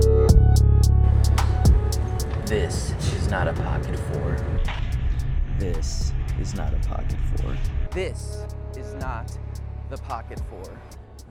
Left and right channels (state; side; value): identical; both; correlation 1.00